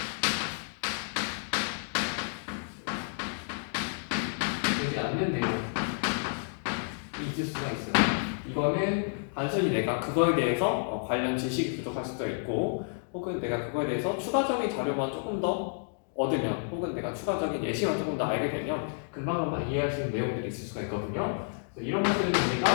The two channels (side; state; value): right; silent; digital silence